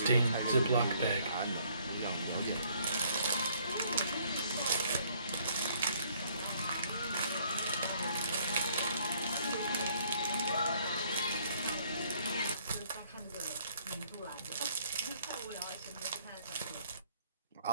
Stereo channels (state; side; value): inverted; both; correlation -0.64